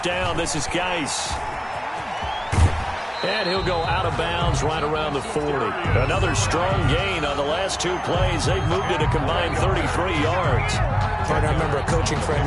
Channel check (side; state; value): both; identical; correlation 1.00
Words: down, this is Geis. And he'll go out of bounds right around the 40. Another strong gain on the last 2 plays. They've moved it a combined 33 yards. I remember a coaching